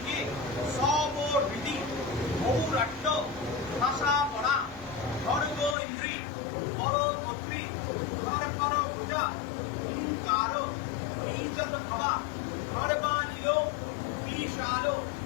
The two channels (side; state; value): right; drops out; at 5.8 s